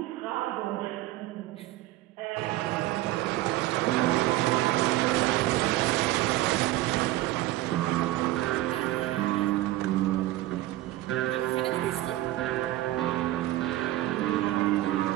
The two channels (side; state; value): left; quieter; 16.2 dB